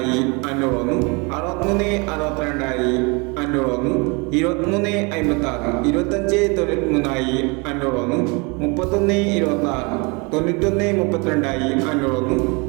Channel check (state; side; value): quieter; left; 29.7 dB